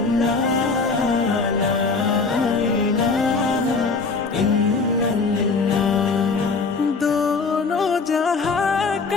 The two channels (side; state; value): right; quieter; 4.3 dB